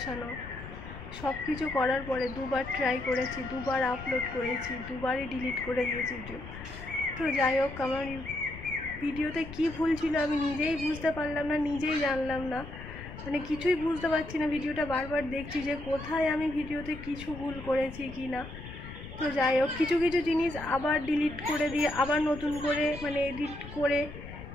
সব কিছু করার পরে দুবার ট্রাই করেছি, দুবার আপলোড করেছি, দুবারই ডিলিট করে দিয়েছি ভিডিও। তো যাই হোক, আমার ভিডিওতে কি ভুল ছিল আমি নিজেই বুঝতে পারলাম না, নিজেই জানলাম না, মানে কিছুই বুঝতে পারছি না। ভিডিওটা বারবার দেখছি যে কোথায় আমি ভিডিওতে কিছু ভুল করেছি কি না। তো যাই হোক, কিছু কিছু জিনিস আবার ডিলিট করে দিয়ে আবার নতুন করে মানে এডিট করে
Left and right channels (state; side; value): noise; left; rumble, 12 dB below the sound